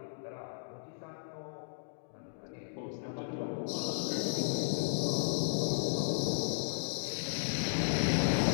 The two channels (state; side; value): silent; right; digital silence